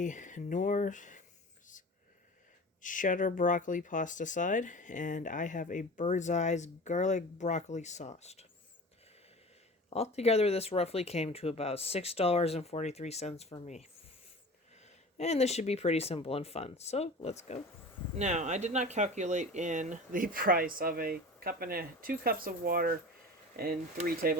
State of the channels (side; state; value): both; normal; correlation 0.36